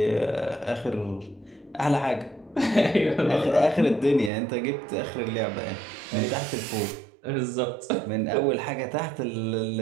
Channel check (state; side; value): drops out; left; at 4.3 s